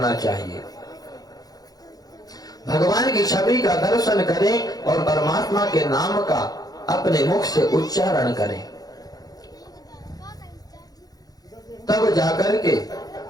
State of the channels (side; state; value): right; late; 0.18 ms